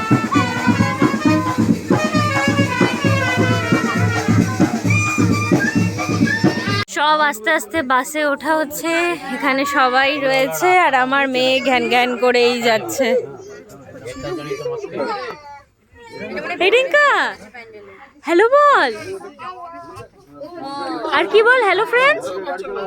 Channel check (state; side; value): identical; both; correlation 1.00